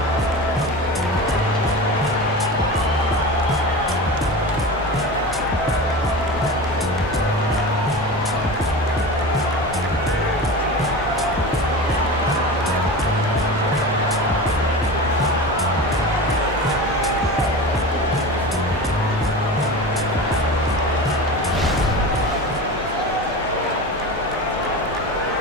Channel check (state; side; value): normal; both; correlation 0.29